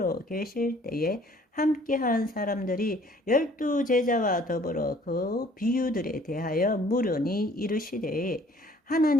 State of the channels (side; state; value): both; normal; correlation 0.56